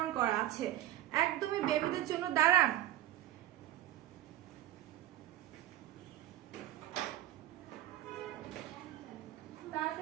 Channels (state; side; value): quieter; left; 14.3 dB